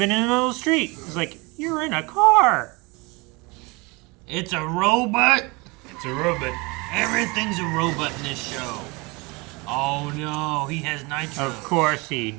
in the middle of the street, it's like, you're in a car. It's a robot. It's a robot. Everything's a robot in this show. Oh no, he has nitro. Of course he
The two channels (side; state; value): left; quieter; 26.6 dB